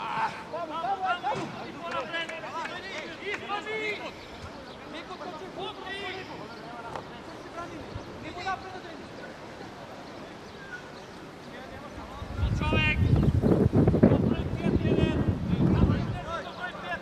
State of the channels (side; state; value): both; identical; correlation 1.00